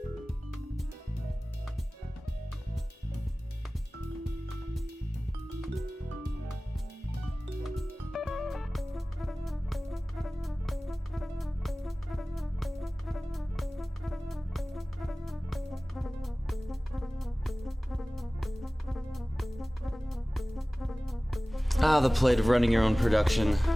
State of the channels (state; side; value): normal; both; correlation 0.98